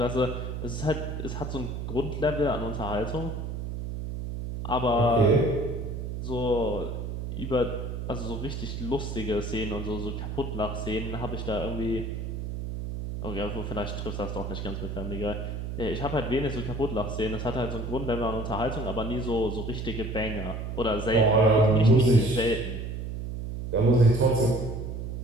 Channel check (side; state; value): right; noise; hum, 5 dB below the sound